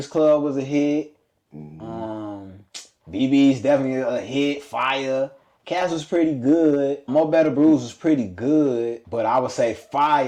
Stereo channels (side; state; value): both; identical; correlation 1.00